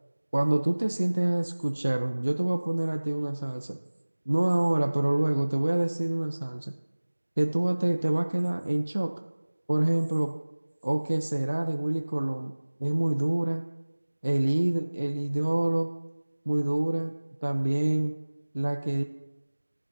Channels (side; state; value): both; inverted; correlation -1.00